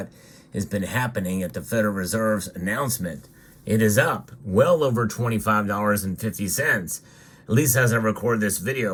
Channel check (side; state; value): both; identical; correlation 1.00